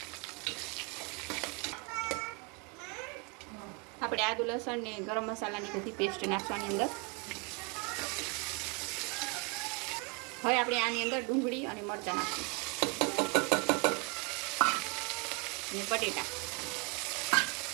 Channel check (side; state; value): left; quieter; 31.4 dB